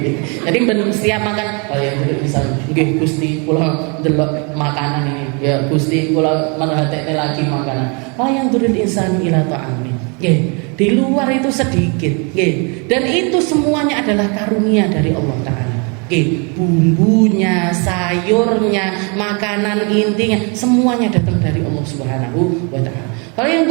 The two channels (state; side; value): quieter; left; 33.8 dB